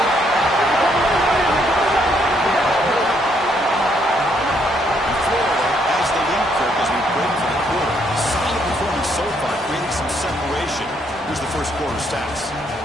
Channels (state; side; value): normal; both; correlation 0.71